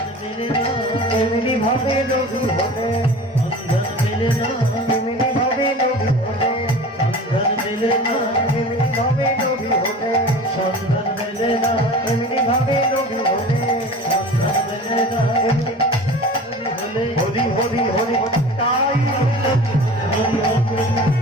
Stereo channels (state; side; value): normal; both; correlation 0.38